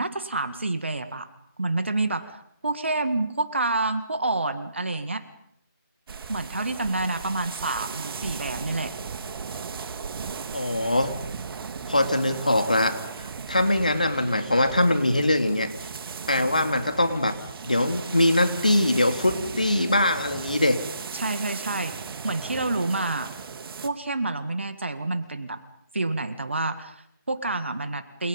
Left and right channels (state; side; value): inverted; both; correlation -0.76